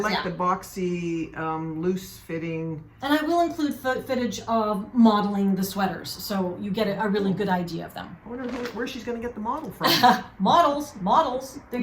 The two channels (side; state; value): both; identical; correlation 1.00